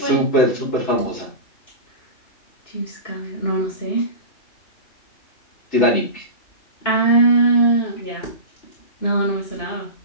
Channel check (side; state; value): right; late; 2.9 ms